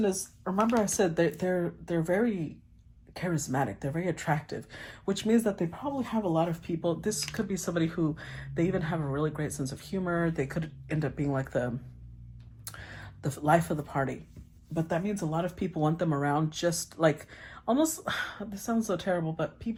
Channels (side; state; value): both; identical; correlation 1.00